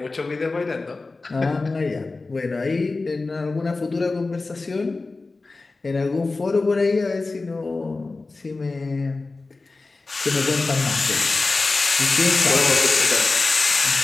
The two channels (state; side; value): quieter; right; 3.6 dB